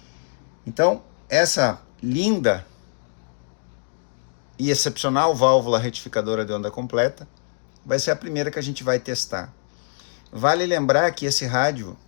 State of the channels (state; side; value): silent; right; digital silence